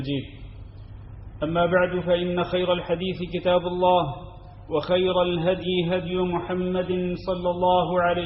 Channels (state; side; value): identical; both; correlation 1.00